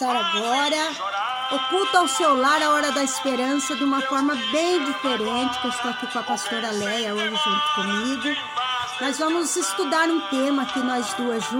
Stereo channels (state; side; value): identical; both; correlation 1.00